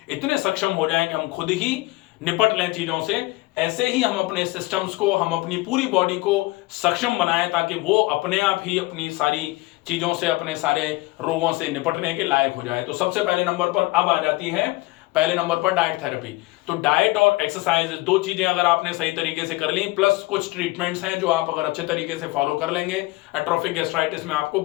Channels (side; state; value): right; quieter; 21.2 dB